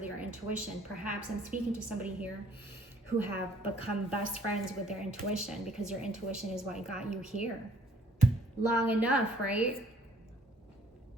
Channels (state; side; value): normal; both; correlation 0.59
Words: your intuition. Perhaps I'm speaking to somebody here who have become best friends with their intuition, because your intuition is what got you here long enough, right?